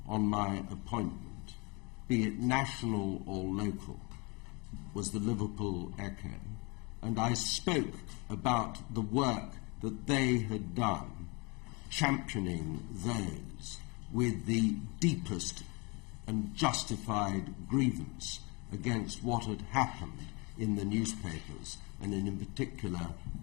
on my appointment, be it national or local, was the Liverpool Echo, and I spoke about the work that they had done, championing those with the deepest and justified grievance against what had happened in the newspapers, and in particular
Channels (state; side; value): quieter; right; 28.9 dB